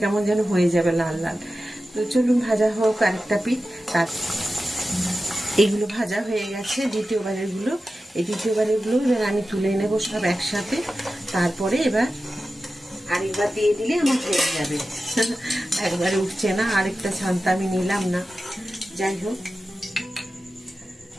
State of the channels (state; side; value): normal; both; correlation 0.93